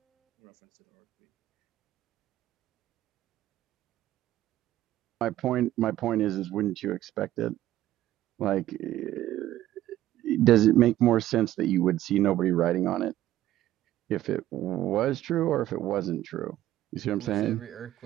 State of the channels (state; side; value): quieter; left; 14.0 dB